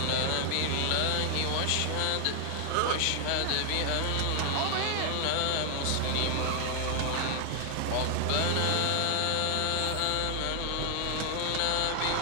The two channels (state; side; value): different; both; correlation 0.00